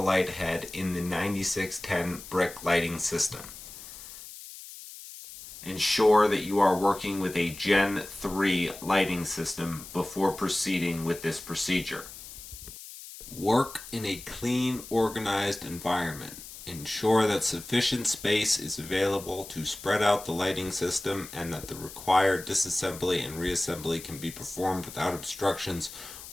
light head in the 9610 brick lighting system. Ensure that you are working with a Gen 3 lighting system before proceeding with this procedure. Work in a clean, organized environment. Ensure that sufficient space is available to spread out the lighting system and that the required disassembly and reassembly can be performed without obstructions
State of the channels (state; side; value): noise; left; hiss, 14 dB below the sound